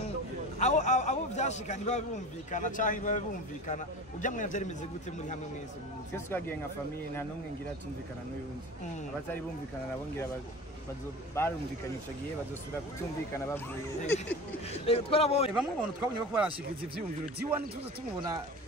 abo byashikanye babumvikana cyangwa babumvikana ujya mwe byari bimeze gute muri hamwe mwese twese twagiye nka famille nta numwe ngira tumvikana n'uyundi abatari bumvikana nabo ngira barumvikanye icyo gihe bazosubira kutumvikana bavuye twarabonye bamwe abantu twabonye ko barashikiriza ivyumviro diwan tuze tumubona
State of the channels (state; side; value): normal; both; correlation 0.34